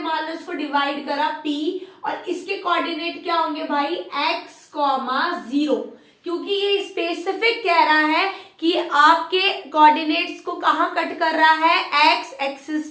लो इसको डिवाइड करा p और इसके कोऑर्डिनेट क्या होंगे भाई, x, 0, क्योंकि ये स्पेसिफिक कह रहा है कि आपके कोऑर्डिनेट्स को कहां कट कर रहा है, एक्स एक्सिस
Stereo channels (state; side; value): identical; both; correlation 1.00